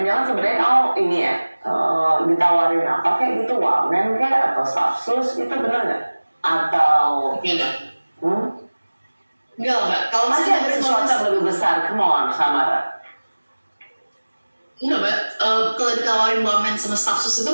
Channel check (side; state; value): both; inverted; correlation -1.00